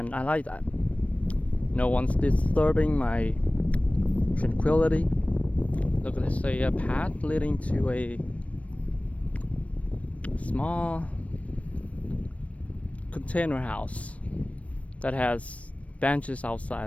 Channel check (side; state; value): right; late; 0.065 ms